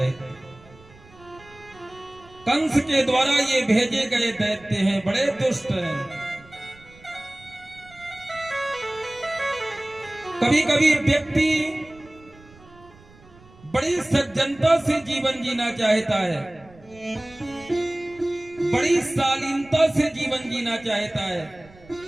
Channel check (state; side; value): noise; right; rumble, 24 dB below the sound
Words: कंस के द्वारा ये भेजे गए दैत्य हैं, बड़े दुष्ट हैं। कभी कभी व्यक्ति बड़ी सज्जनता से जीवन जीना चाहता है, बड़ी शालीनता से जीवन जीना चाहता है,